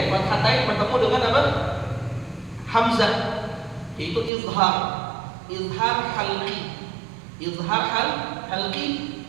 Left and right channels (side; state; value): left; drops out; at 4.3 s